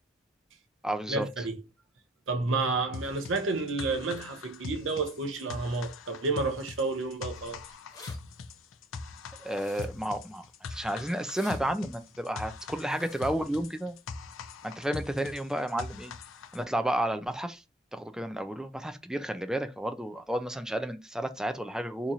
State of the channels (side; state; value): both; normal; correlation 0.61